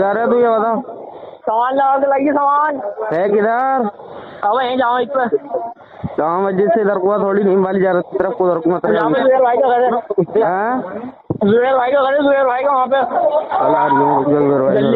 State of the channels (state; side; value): identical; both; correlation 1.00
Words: है तू ये बता सामान लगा के लाइए सामान है किधर अब यहीं जाओ इस पर जहाँ मस्जिद से इधर को थोड़ी नहीं वाली जा रही तरफ को उधर को मत यहाँ पे जुबेर भाई का घर है जुबेर भाई का घर है जुबेर भाई का वहाँ पे